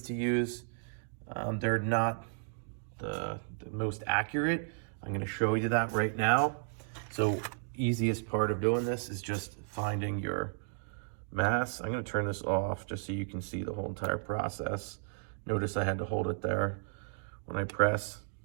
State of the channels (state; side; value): silent; left; digital silence